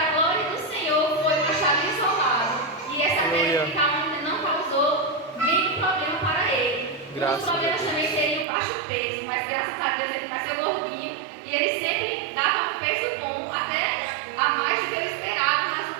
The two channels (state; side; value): drops out; left; at 8.5 s